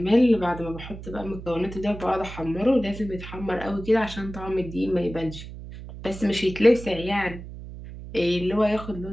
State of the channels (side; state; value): right; noise; hum, 12 dB below the sound